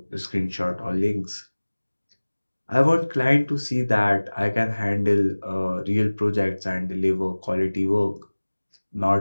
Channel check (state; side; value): inverted; both; correlation -1.00